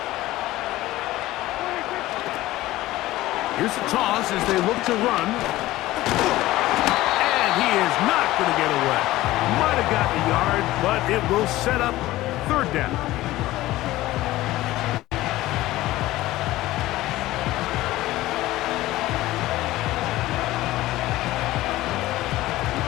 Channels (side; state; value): right; quieter; 16.8 dB